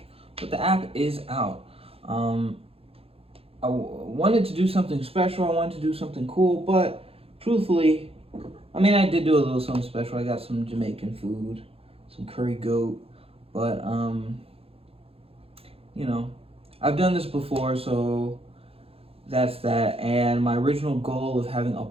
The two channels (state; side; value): late; left; 0.28 ms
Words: but the app is out. I wanted to do something special. I wanted to do something cool, but truthfully, I did do a little something special. I got some Jamaican food, some curry goat, but I've done this before, so that's that. And my original goal of having a